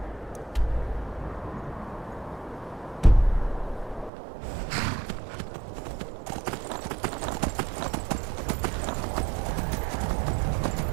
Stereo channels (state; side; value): drops out; left; at 4.1 s